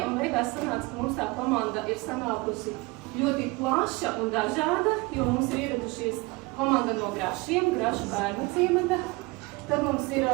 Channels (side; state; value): left; quieter; 24.6 dB